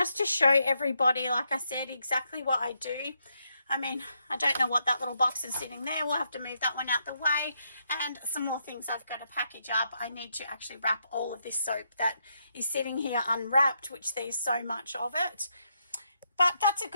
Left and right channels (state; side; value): inverted; both; correlation -0.79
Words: to show everybody, like I said, exactly what I do. I mean, I don't know what that little box is sitting there. We'll have to move that one out the way. And some more things I've got to package up. I need to actually wrap all of this soap that is sitting here unwrapped, which there's so much of it. But that's a